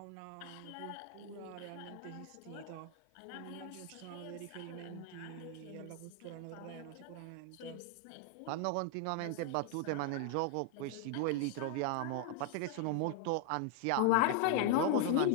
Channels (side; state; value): both; different; correlation 0.00